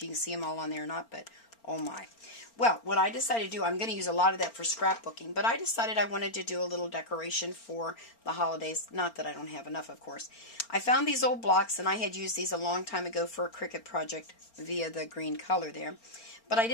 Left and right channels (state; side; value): late; right; 4.4 ms